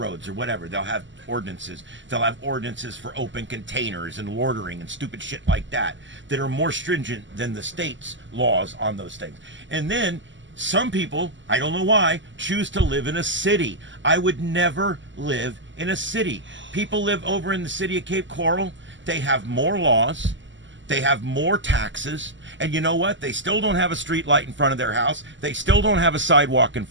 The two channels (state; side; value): late; left; 0.54 ms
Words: or whatever. They'll have ordinances. They'll have ordinances for open containers and loitering and stupid shit like that that are more stringent than the state's laws on those things. And then some people, I don't know why, choose to live in a city. I would never live in a city. People live over in the city of Cape Coral. They have more laws. They have more taxes. And you know what? They still don't have a street light in front of their house. They still don't have a sidewalk in